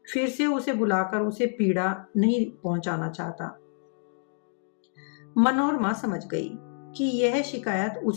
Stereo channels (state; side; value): silent; right; digital silence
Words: फिर से उसे बुलाकर उसे पीड़ा नहीं पहुंचाना चाहता। मनोरमा समझ गई कि यह शिकायत